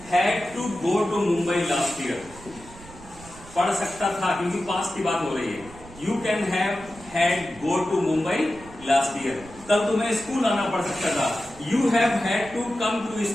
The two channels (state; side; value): noise; right; rumble, 19 dB below the sound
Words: had to go to Mumbai last year. पढ़ सकता था क्योंकि पास्ट की बात हो रही है। You can have had go to Mumbai last year. कल तुम्हें स्कूल आना पड़ सकता था, you have had to come to